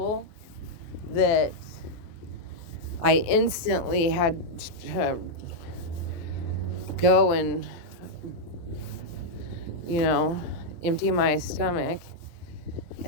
that I instantly had to go and empty my stomach.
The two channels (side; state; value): right; late; 24 ms